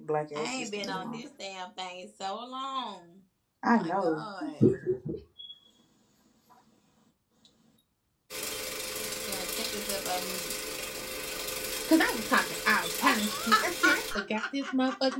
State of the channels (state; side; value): identical; both; correlation 1.00